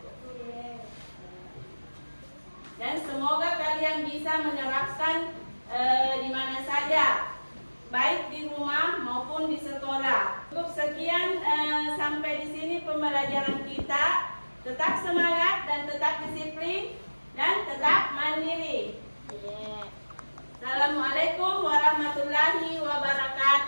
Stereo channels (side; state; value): both; inverted; correlation -1.00